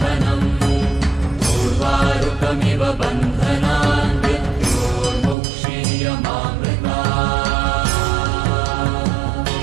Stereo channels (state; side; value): drops out; left; at 5.4 s